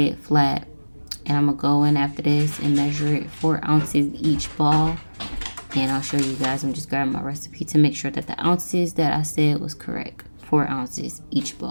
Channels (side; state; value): both; inverted; correlation -1.00